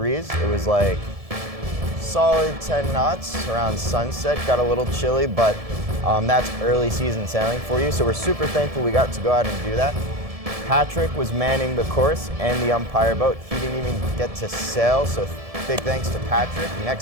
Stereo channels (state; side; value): late; left; 1.7 ms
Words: It was like solid 10 knots around sunset. Got a little chilly, but that's early season sailing for you. So we're super thankful we got to go out and do that. Patrick was manning the course and the Umpire boat. He didn't even get to sail, so big thanks to Patrick.